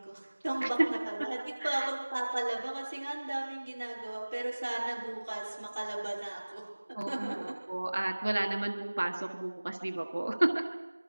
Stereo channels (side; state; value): both; inverted; correlation -1.00